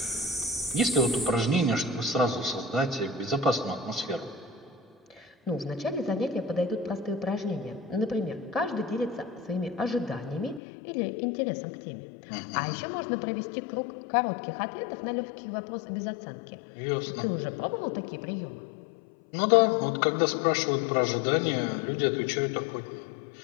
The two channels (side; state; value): right; drops out; at 10.6 s